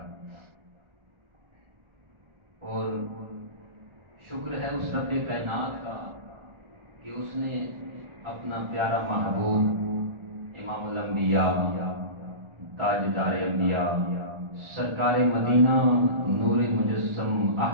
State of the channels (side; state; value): left; late; 1.4 ms